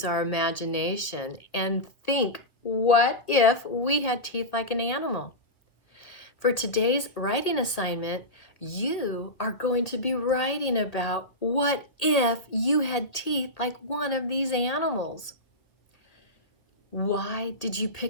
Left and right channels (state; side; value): late; right; 1.7 ms